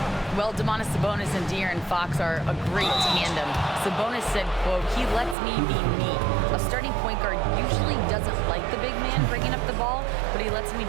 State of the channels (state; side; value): drops out; left; at 5.4 s